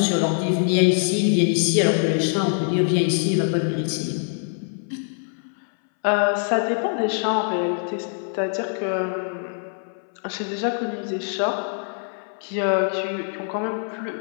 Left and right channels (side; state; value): right; silent; 63 dB below the other